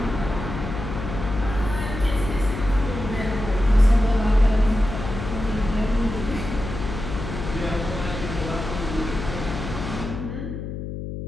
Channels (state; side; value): noise; left; hum, 7 dB below the sound